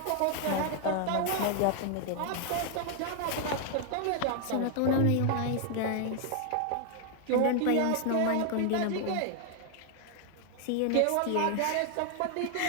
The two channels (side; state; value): both; different; correlation 0.00